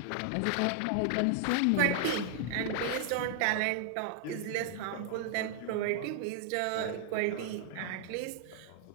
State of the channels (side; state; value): both; different; correlation 0.00